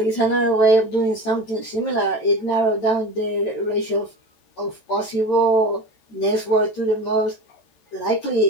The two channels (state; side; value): late; right; 14 ms